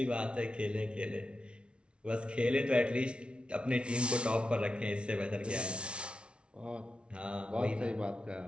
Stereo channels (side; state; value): left; late; 0.058 ms